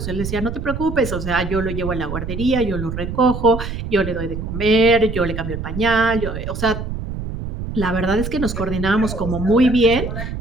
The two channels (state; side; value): noise; right; rumble, 6 dB below the sound